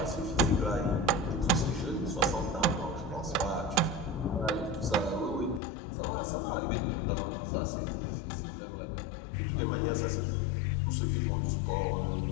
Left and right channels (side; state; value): right; drops out; at 5.6 s